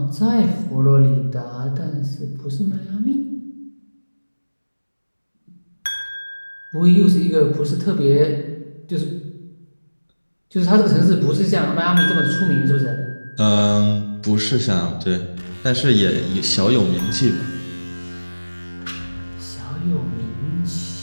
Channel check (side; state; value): both; inverted; correlation -1.00